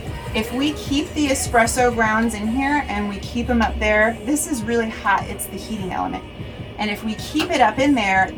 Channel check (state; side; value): identical; both; correlation 1.00